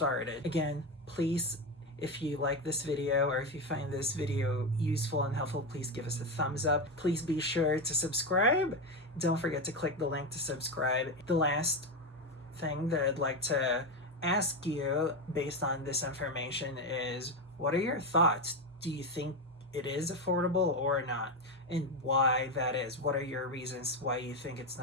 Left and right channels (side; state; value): both; normal; correlation 0.13